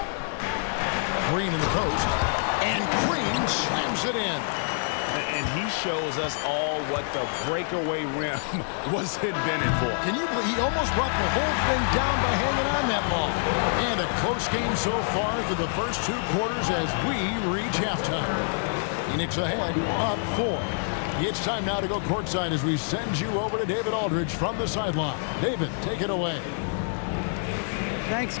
Green in the post. And Green slams it in. And he shows us all what the breakaway rim was invented for. Can you believe he almost brought the whole thing down by hanging on that ball? And a close game so far through the first 2 quarters as we reach halftime. Phoenix ahead, up 4. It's time now to go courtside as we send you over to David Aldridge from the sideline. David, take it away. Thanks,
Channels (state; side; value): silent; right; digital silence